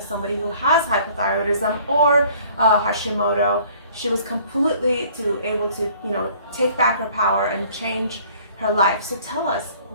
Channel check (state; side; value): inverted; both; correlation -0.55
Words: somebody who has hypothyroidism or Hashimoto. She was completely able to, take back her power and change her life. So tell us,